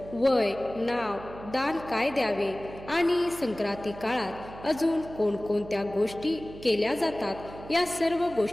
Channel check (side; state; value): right; noise; hum, 15 dB below the sound